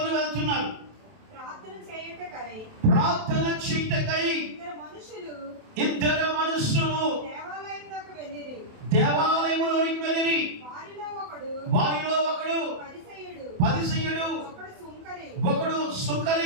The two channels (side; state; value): left; late; 27 ms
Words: వెళ్తున్నారు. ప్రార్థన చేయుటకై ఇద్దరు మనుషులు దేవాలయములోనికి వెళ్ళిరి. వారిలో ఒకడు పరిసయ్యుడు, ఒకడు